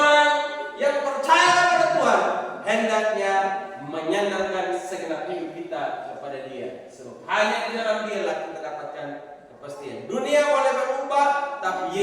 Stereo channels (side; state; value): both; identical; correlation 1.00